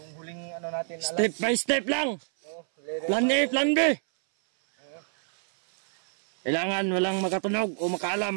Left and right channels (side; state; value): left; silent; 60 dB below the other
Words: huling ano natin. Step by step lang. Oo. Lere. Plan A, plan B. Kailangan walang makatunog o